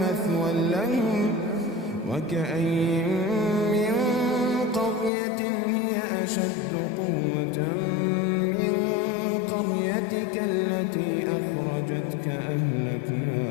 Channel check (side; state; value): right; drops out; at 5.1 s